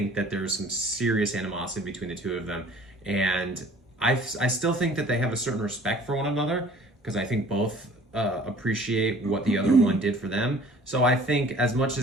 that there's some serious animosity between the two of them. And I still think that they have a certain respect for one another because I think both appreciate what the other one did for them. So I think as much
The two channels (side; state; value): both; normal; correlation 0.51